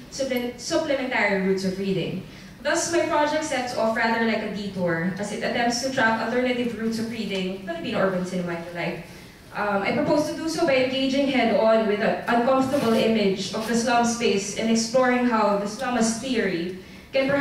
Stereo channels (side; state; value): both; identical; correlation 1.00